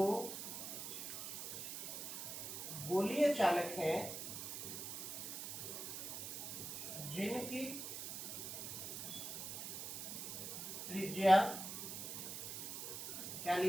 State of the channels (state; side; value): noise; right; hiss, 5 dB below the sound